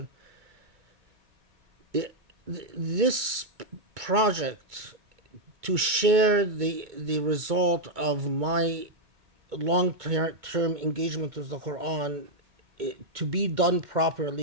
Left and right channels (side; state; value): left; late; 2.2 ms